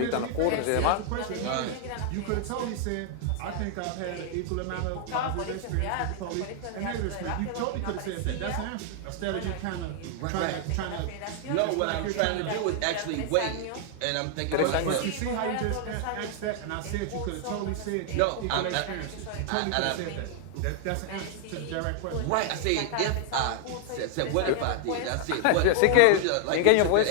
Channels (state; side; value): different; both; correlation 0.00